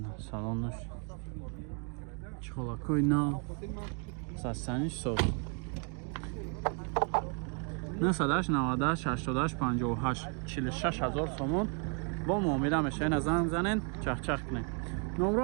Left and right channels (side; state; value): left; quieter; 39.8 dB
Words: салонаш чхолакои нав састаниш соз 988 46000 сомон бо муомила меша. ина занг занед чахчах кунед. номро